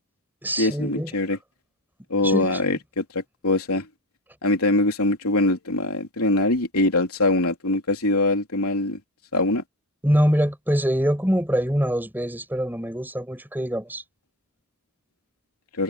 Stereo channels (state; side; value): normal; both; correlation 0.25